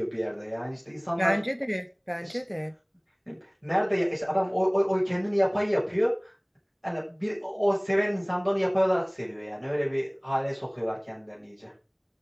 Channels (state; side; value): identical; both; correlation 1.00